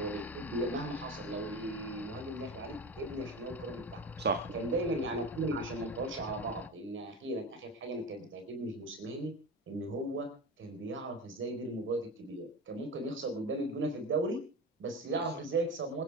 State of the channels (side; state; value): both; normal; correlation 0.27